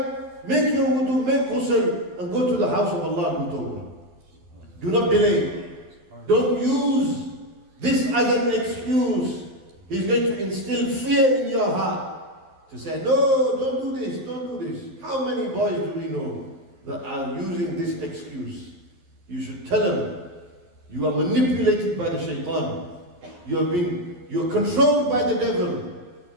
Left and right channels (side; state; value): left; late; 12 ms